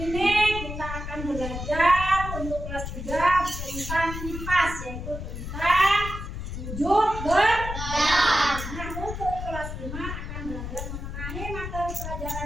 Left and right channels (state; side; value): noise; left; rumble, 7 dB below the sound